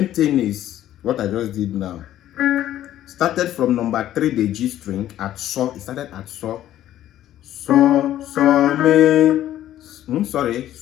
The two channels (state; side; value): quieter; right; 12.6 dB